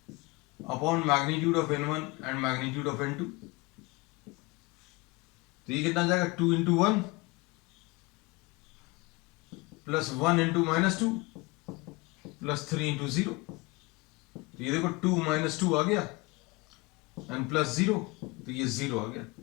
upon magnitude of n1 and magnitude of n2। तो ये कितना आ जाएगा 2 into 1 plus 1 into minus 2 plus 3 into 0। तो ये देखो 2 माइनस 2 आ गया एंड प्लस 0, तो ये 0 आ गया।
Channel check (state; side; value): quieter; right; 24.5 dB